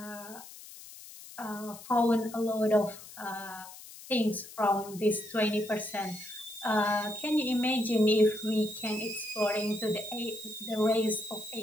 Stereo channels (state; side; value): noise; left; hiss, 16 dB below the sound